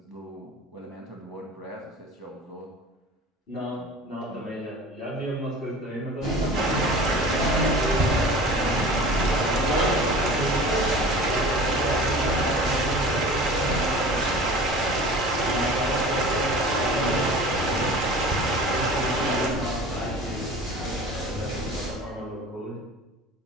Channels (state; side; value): normal; both; correlation 0.40